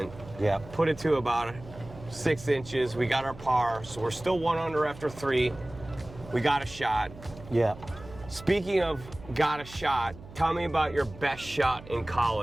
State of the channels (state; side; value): noise; right; hum, 17 dB below the sound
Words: Yeah. Put it to about 6 inches. We got our par, so we're still 1 under after 3. We got a shot. Yeah. Speaking of got a shot, tell me about your best shot in